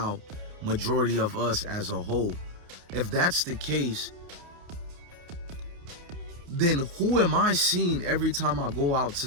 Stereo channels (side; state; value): left; late; 29 ms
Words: majority of us as a whole. If that's the case, then who am I seeing every time I go out